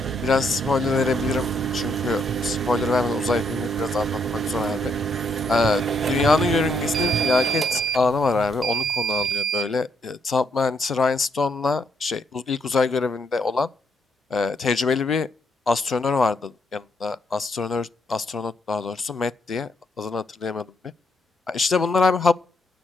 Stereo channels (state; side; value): normal; both; correlation 0.75